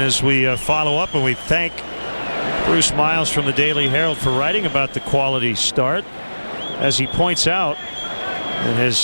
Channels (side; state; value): both; inverted; correlation -1.00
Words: we follow up, and we thank Bruce Miles from the Daily Herald for writing about the quality start, as he points out in